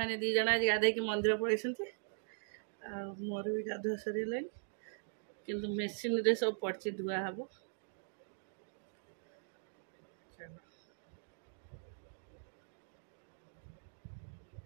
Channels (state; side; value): silent; left; digital silence